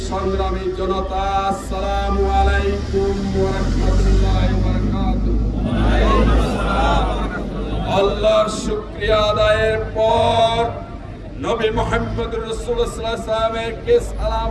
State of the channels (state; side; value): identical; both; correlation 1.00